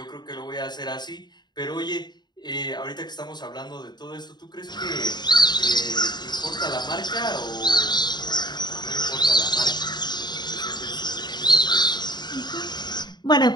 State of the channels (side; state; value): right; late; 0.21 ms